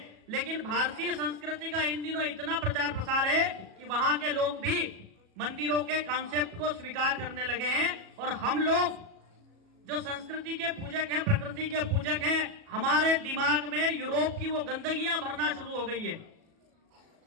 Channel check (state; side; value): late; left; 37 ms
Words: लेकिन भारतीय संस्कृति का इन दिनों इतना प्रचार प्रसार है कि वहां के लोग भी मंदिरों के कॉन्सेप्ट को स्वीकार करने लगे हैं। और हम लोग जो संस्कृति के पूजक हैं, प्रकृति के पूजक हैं, हमारे दिमाग में यूरोप की वो गंदगियां भरना शुरू हो गई है।